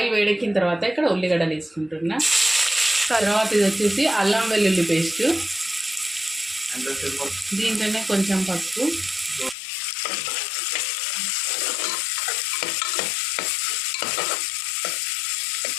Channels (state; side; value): drops out; right; at 9.6 s